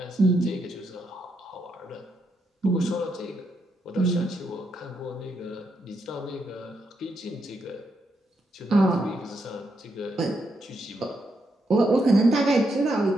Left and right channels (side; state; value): both; normal; correlation 0.80